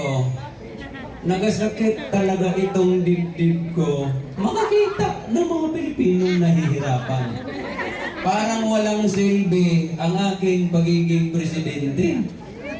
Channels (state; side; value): identical; both; correlation 1.00